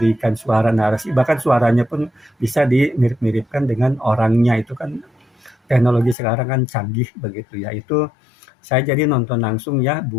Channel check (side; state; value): right; drops out; at 6.2 s